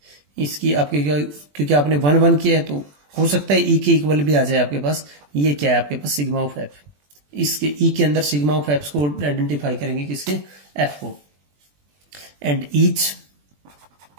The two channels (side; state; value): left; late; 21 ms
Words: इसकी आपके क्या, क्योंकि आपने 1 1 किया है तो हो सकता है ई के इक्वल भी आ जाए आपके पास। ये क्या है आपके पास सिग्मा ऑफ एफ, इसके ई के अंदर सिग्मा ऑफ एफ को आइडेंटिफाई करेंगे किसके, एफ को। And each